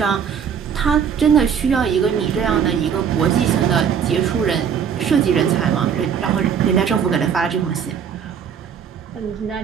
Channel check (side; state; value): left; quieter; 7.5 dB